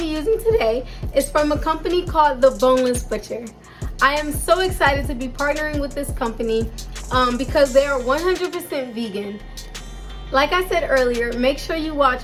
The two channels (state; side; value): identical; both; correlation 1.00